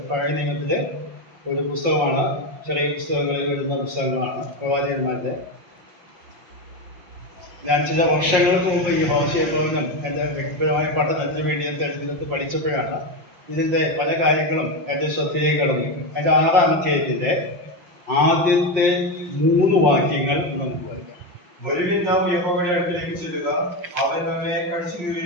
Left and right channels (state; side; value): late; left; 5.6 ms